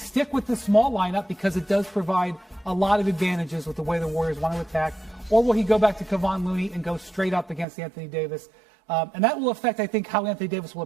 with the small lineup because it does provide a lot of advantages with the way the Warriors want to attack, or will he go back to Kevon Looney and go straight up against Anthony Davis? And that will affect, I think, how Anthony Davis will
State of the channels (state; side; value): drops out; left; at 7.7 s